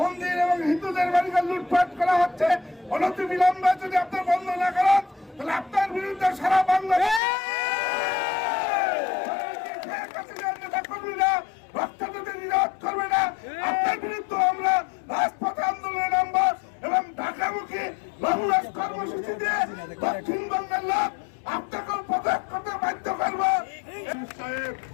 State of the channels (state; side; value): drops out; right; at 7.2 s